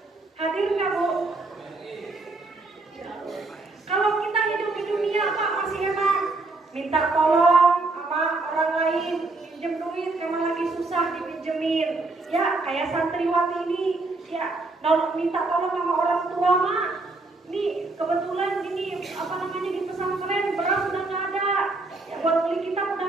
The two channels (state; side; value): quieter; left; 3.3 dB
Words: Hadir nggak, Bu? Kalau kita hidup di dunia, Pak, masih enak. Minta tolong sama orang lain, pinjem duit, memang lagi susah dipinjemin. Ya, kayak santriwati ini, ya, minta tolong sama orang tua, Mak. Nih, kebetulan ini, di pesantren, beras udah nggak ada. Ya, buat beli kita udah